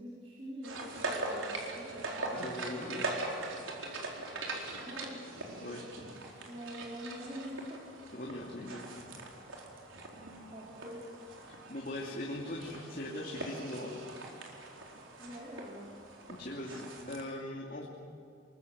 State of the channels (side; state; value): both; normal; correlation 0.15